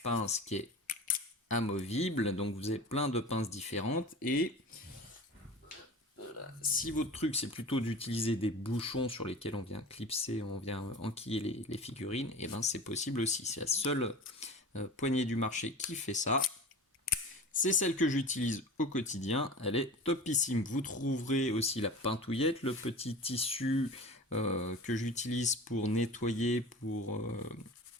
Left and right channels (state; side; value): normal; both; correlation 0.35